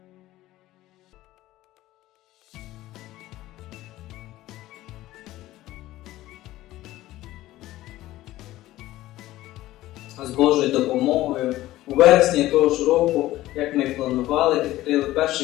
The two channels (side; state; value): right; quieter; 15.9 dB